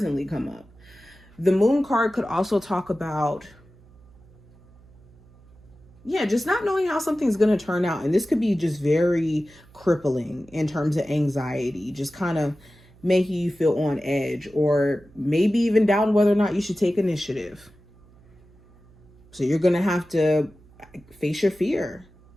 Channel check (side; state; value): right; noise; hum, 27 dB below the sound